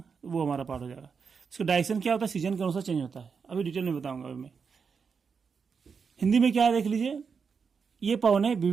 वो हमारा पार्ट हो जाएगा। इसका डायरेक्शन क्या होता है, सीजन के अनुसार चेंज होता है। अभी डिटेल में बताऊंगा। अभी मैं हिंदी में क्या है देख लीजिए। ये पवने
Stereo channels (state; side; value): quieter; left; 5.8 dB